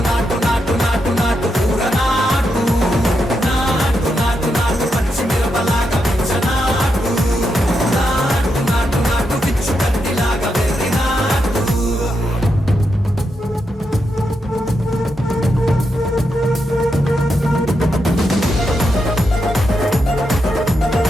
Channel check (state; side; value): normal; both; correlation 0.84